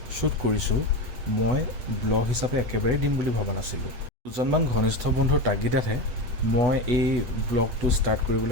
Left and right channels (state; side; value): late; left; 8.1 ms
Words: শ্বুট কৰিছোঁ মই ব্লগ হিচাপে একেবাৰে দিম বুলি ভবা নাছিলোঁ। দুজনমান ঘনিষ্ঠ বন্ধুৰ তাগিদাতহে মই এই ব্লগটো ষ্টাৰ্ট